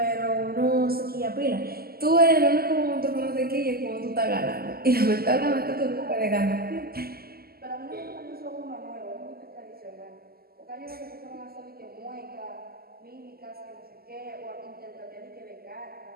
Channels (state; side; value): late; left; 0.45 ms